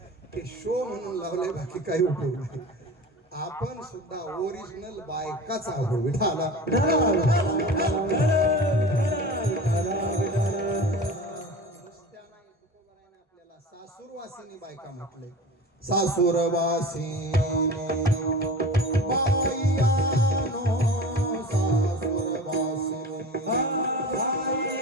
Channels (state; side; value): normal; both; correlation 0.35